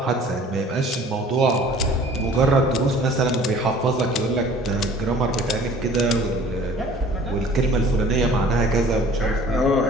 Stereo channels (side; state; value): both; normal; correlation 0.49